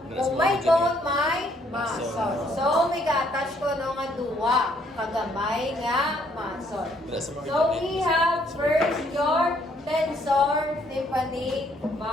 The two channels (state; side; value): normal; both; correlation 0.67